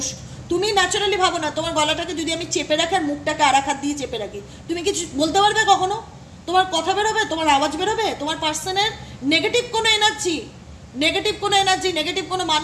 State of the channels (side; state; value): both; identical; correlation 1.00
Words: তুমি ন্যাচারালি ভাবো না, তোমার গলাটাকে যদি আমি চেপে রাখি আর মুখটাকে আর এক হাত দিয়ে চেপে রাখি, তুমি কিছু বলতে পারবে কখনো? তোমার কথা বেরোবে, তোমার আওয়াজ বেরোবে? তোমার পার্সনের নেগেটিভ কোনো এনার্জি, নেগেটিভ কোনো